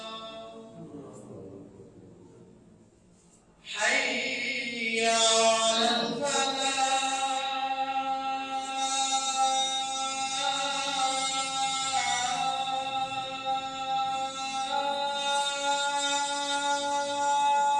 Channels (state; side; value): identical; both; correlation 1.00